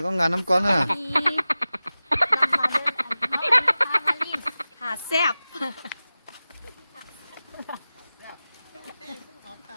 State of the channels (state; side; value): inverted; both; correlation -0.96